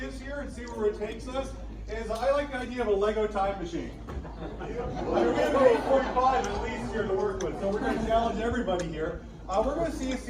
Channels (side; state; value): both; identical; correlation 1.00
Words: here and see where it takes us. I like the idea of a Lego time machine. We have 8:45 at least here to work with, so we're going to challenge everybody here. We're going to see a